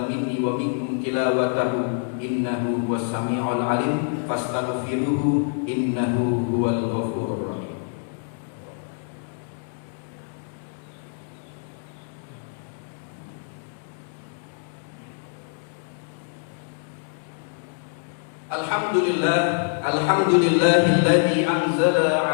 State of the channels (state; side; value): silent; right; digital silence